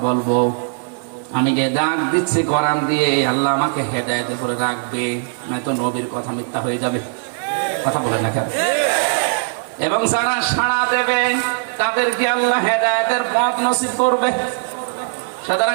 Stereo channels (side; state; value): left; silent; digital silence